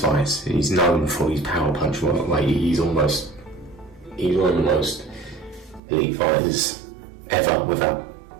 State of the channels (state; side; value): drops out; left; at 5.8 s